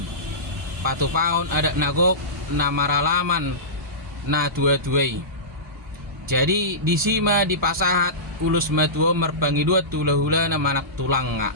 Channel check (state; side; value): normal; both; correlation -0.19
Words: Patupaon ada nagok na maralaman na tua-tuai. Jadi disima dipasahat ulus matua merbangi dua tula-hula na manak tulang nga.